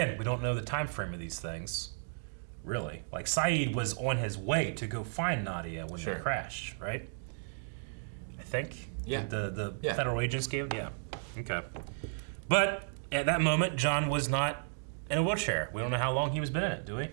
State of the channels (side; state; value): left; silent; digital silence